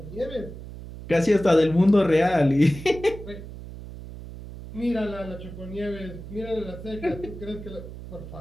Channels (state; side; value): noise; right; hum, 12 dB below the sound